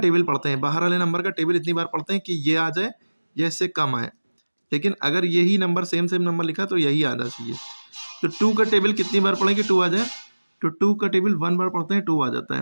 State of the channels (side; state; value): both; inverted; correlation -1.00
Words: पढ़ते हैं, बाहर वाले नंबर का टेबल इतनी बार पढ़ते हैं कि ये आ जाए या इससे कम आए। लेकिन अगर यही नंबर सेम नंबर लिखा तो यही आना चाहिए। तो 2 का टेबल कितनी बार पढ़ेंगे 2 आ जाए? तो 2 का टेबल 1 बार पढ़ते हैं 2 आ जाता